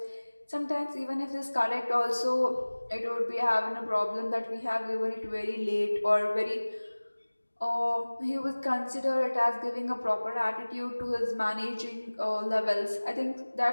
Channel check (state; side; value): inverted; both; correlation -1.00